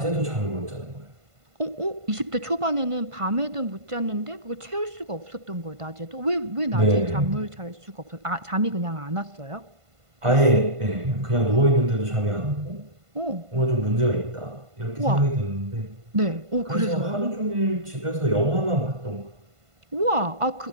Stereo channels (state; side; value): late; left; 1.5 ms